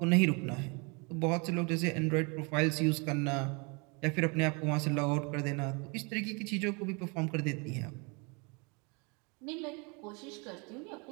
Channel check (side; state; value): left; quieter; 31.1 dB